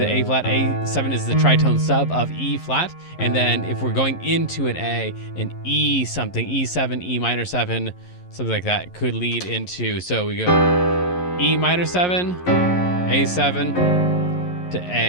A flat. A7 is the tritone sub of E flat. And then if we're going into an A, an E something, E7, E minor 7, something like that could lead into, so we go E minor 7, A7 to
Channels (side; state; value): right; late; 11 ms